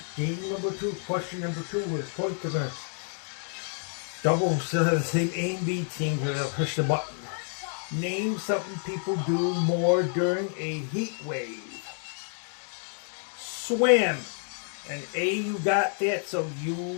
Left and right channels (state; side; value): silent; right; 56 dB below the other